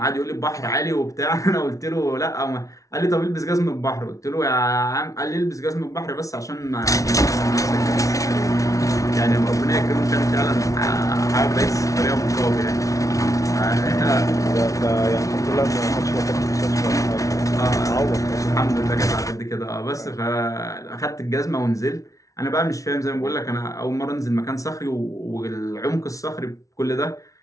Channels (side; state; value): right; late; 0.16 ms